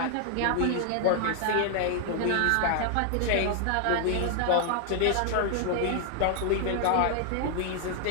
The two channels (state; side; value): different; both; correlation 0.00